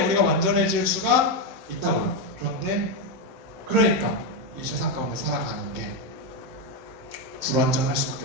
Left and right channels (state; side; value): late; left; 16 ms